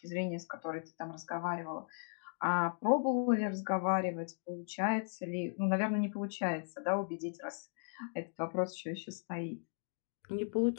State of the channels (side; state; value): right; silent; digital silence